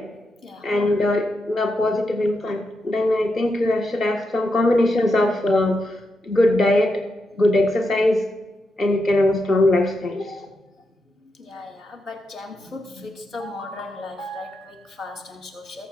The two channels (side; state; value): both; normal; correlation 0.85